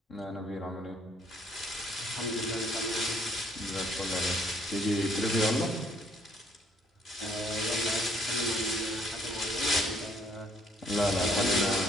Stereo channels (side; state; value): both; normal; correlation 0.65